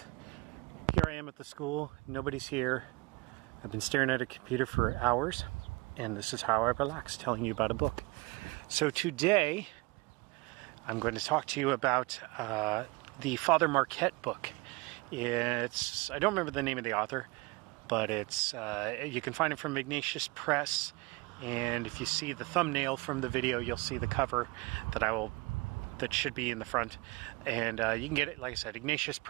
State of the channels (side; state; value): left; quieter; 25.1 dB